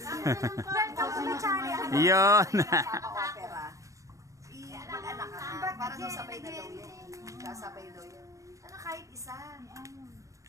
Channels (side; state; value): left; late; 0.16 ms